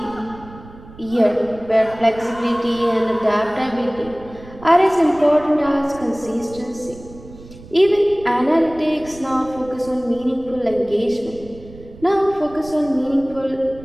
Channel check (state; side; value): noise; right; rumble, 19 dB below the sound